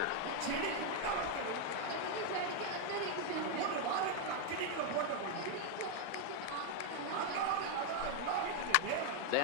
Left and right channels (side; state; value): both; different; correlation 0.01